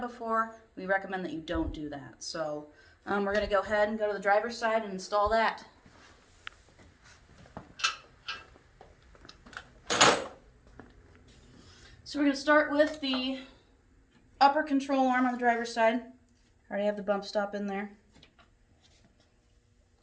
before, we recommend that you don't do that. So we're going to go ahead and go to the driver's side and install that. So we're going to start with the upper control arm on the driver's side. I already have the bump stop in there.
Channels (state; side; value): identical; both; correlation 1.00